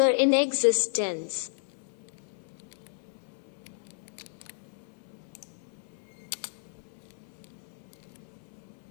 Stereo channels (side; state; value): right; silent; 56 dB below the other